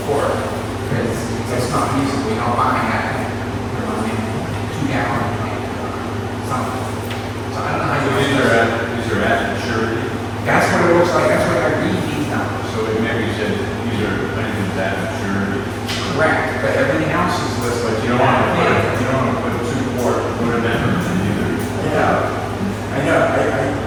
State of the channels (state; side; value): identical; both; correlation 1.00